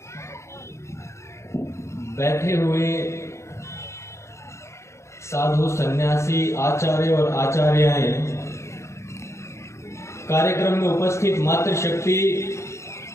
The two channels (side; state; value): right; late; 0.14 ms